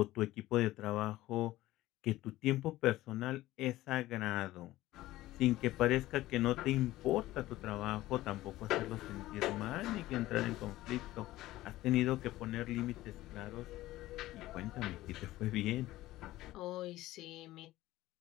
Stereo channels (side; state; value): right; quieter; 16.5 dB